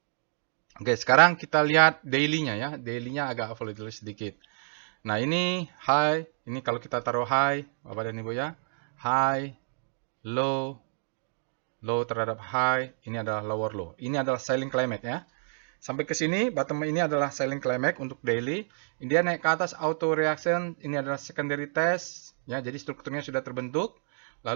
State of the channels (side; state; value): left; silent; digital silence